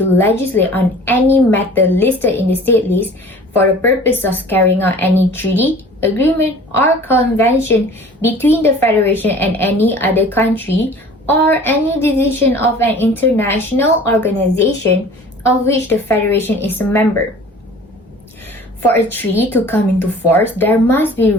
legislate on any matter listed in the state list for the purpose of carrying out any treaty, agreement, or convention between the Federation and any other country, or any decision of an international organization of which the Federation is a member. For a treaty to come into force, there must be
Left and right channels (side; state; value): both; normal; correlation 0.45